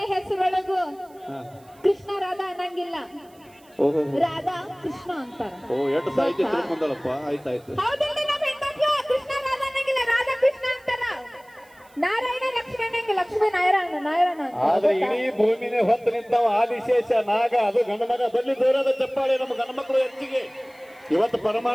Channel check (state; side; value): noise; right; hiss, 30 dB below the sound